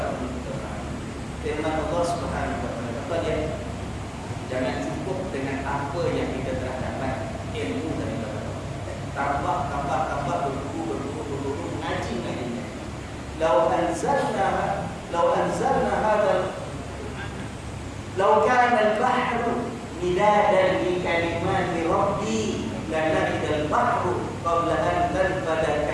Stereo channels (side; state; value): both; identical; correlation 1.00